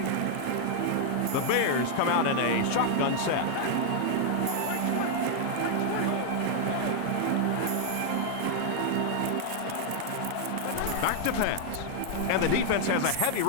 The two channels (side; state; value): both; different; correlation 0.00